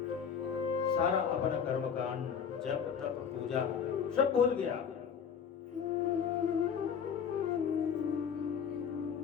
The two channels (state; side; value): quieter; right; 7.3 dB